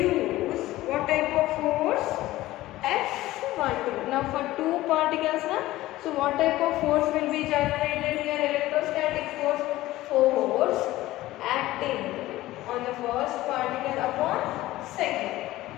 what type of force? F12. Now for two particles, so what type of force will be generated here? Electrostatic force acting on the first particle upon second.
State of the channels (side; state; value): right; quieter; 16.6 dB